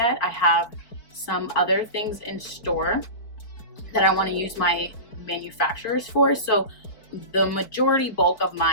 I have some other things in store that I want to use my manufacturers for. So the majority bulk of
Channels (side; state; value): right; late; 4.6 ms